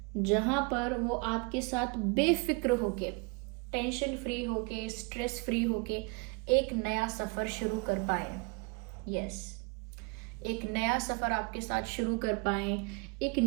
जहां पर वो आपके साथ बेफिक्र होके, टेंशन फ्री होके, स्ट्रेस फ्री होके एक नया सफ़र शुरू कर पाए। यस, एक नया सफ़र आपके साथ शुरू कर पाए, एक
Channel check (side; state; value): left; quieter; 29.8 dB